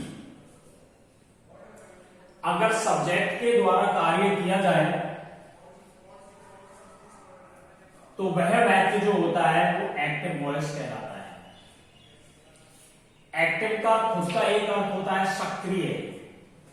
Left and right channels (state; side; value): identical; both; correlation 1.00